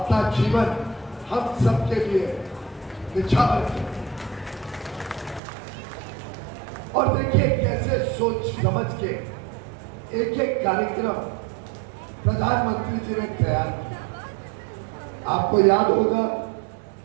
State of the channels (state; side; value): drops out; left; at 5.4 s